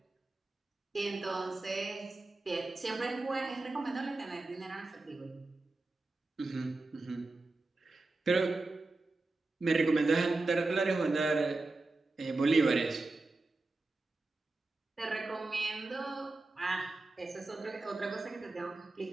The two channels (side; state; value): left; quieter; 3.2 dB